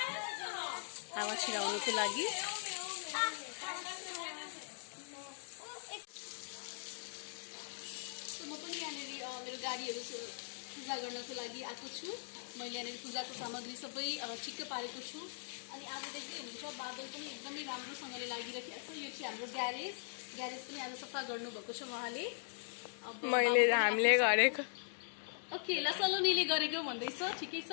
हावा छिराउनको लागि। म पनि यहाँनिर मेरो गाडीहरू पूजा गर्नको लागि आएको छु। मैले यहाँनिर पूजाको सामग्री सबै ठिक्क पारेको छु। अनि आज देख्दै हुनुहुन्छ बादल पनि एकदमै राम्रोसँगले लागिरहेको छ। यो चाहिँ हाम्रो ग्यारेज पनि आज सफा गर्नुभएको छ उहाँले। हामीले गरेको ओके ल सलोनीले गरेको भन्दैछ, ठिकै छ।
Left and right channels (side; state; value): right; silent; digital silence